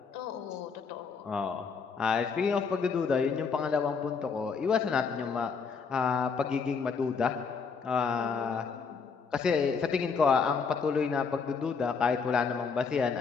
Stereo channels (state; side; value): quieter; right; 5.4 dB